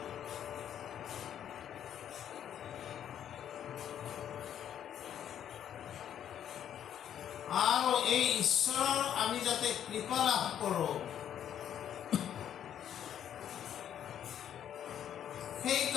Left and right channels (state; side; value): quieter; right; 9.9 dB